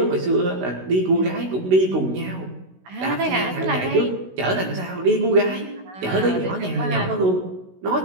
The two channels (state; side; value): late; left; 16 ms